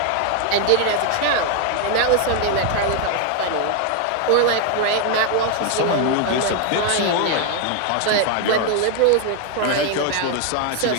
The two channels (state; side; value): different; both; correlation 0.00